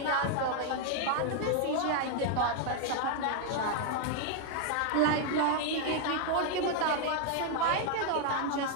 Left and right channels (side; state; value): both; different; correlation 0.00